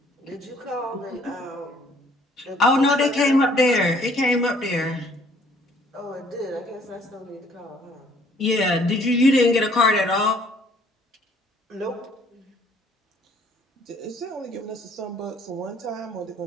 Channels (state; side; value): normal; both; correlation 0.60